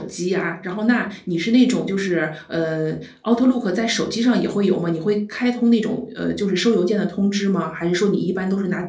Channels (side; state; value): both; identical; correlation 1.00